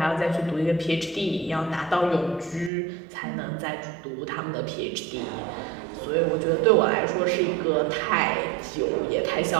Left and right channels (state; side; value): drops out; left; at 2.7 s